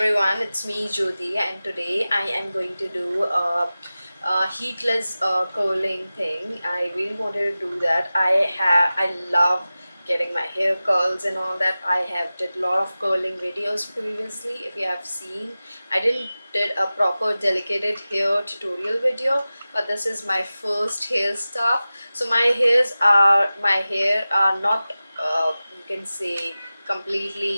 it's me Jyoti, and today I am going to do a heatless curling thing. I really wanted to do that. I love getting my hair curls and all that. I have did a lot of curling videos previously. If you have seen, I didn't did a proper delicate hair tutorial video, but this is my first hair stuff. So my hair are not you can say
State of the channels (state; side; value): inverted; both; correlation -0.96